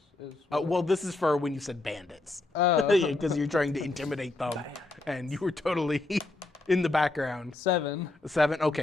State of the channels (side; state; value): right; quieter; 3.0 dB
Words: Well, this is for when you said bandits. Oh. Because you're trying to intimidate them, and you were totally in the background. 7. 7.